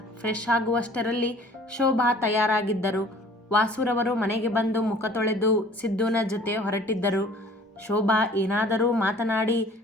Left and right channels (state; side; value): normal; both; correlation 0.51